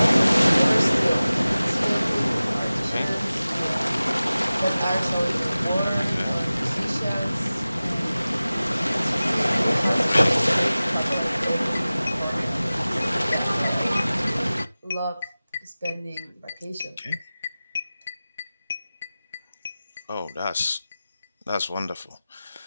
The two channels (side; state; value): both; inverted; correlation -0.97